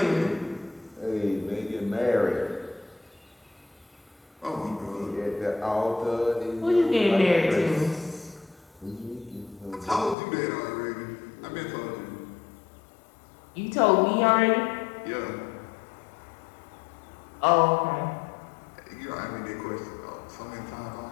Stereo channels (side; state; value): right; drops out; at 10.2 s